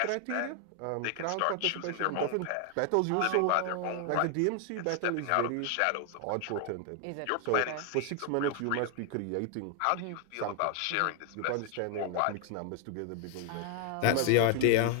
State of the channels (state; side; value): different; both; correlation 0.00